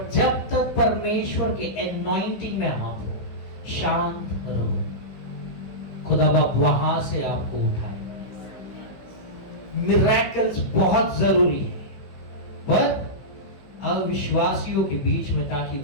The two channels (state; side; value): late; right; 16 ms